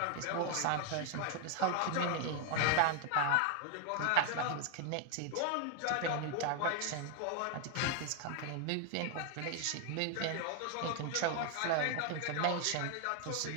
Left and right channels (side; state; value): both; different; correlation 0.00